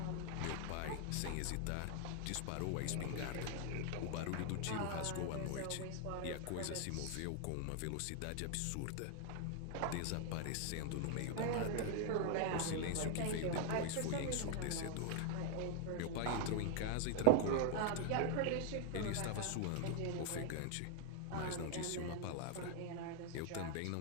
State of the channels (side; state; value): both; different; correlation 0.00